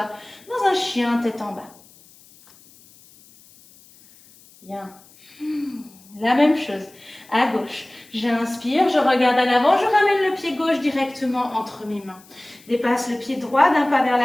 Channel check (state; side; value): noise; left; hiss, 26 dB below the sound